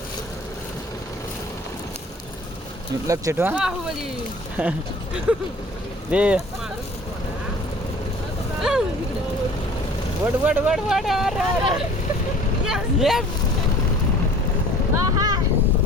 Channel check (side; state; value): both; normal; correlation 0.48